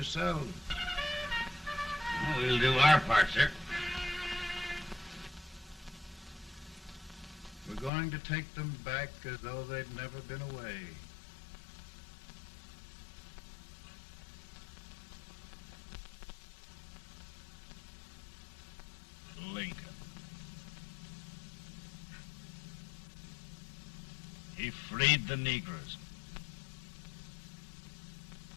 Well, we'll do our part, sir. We're going to take them back as though they'd never been away. Lincoln. He freed the Negroes.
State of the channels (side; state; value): right; drops out; at 7.9 s